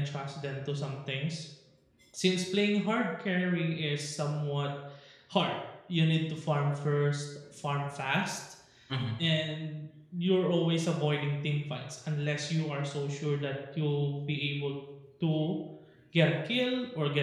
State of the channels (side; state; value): both; identical; correlation 1.00